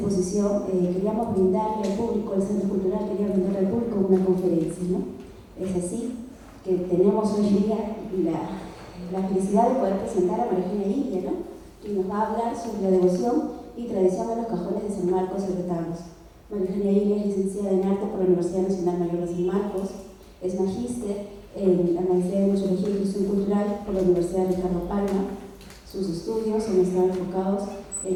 queríamos brindarle al público, el Centro Cultural quería brindarle al público una conferencia, ¿no? Es así que tenemos hoy día la felicidad de poder presentar a María Eugenia Ilia, ¿no? Que nos va a hablar sobre la devoción y tradición de los cajones de San Marcos y retablos. María Eugenia Ilia es licenciada en arte por la Universidad Nacional Mayor de San Marcos, es magíster en la Maestría de Museología y Gestión Cultural por la Universidad de Ricardo Palma. Sus estudios han estado enfocados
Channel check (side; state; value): both; identical; correlation 1.00